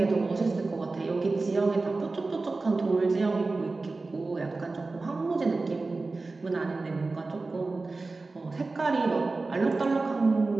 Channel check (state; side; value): quieter; left; 3.6 dB